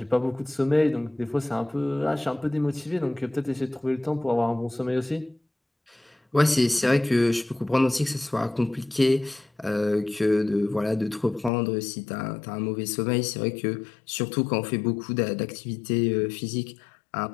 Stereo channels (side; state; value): right; drops out; at 11.5 s